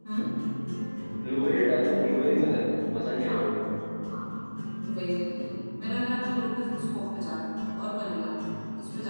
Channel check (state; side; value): inverted; both; correlation -1.00